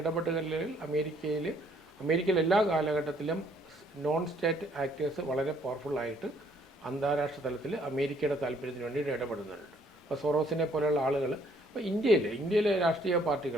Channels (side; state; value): both; normal; correlation 0.64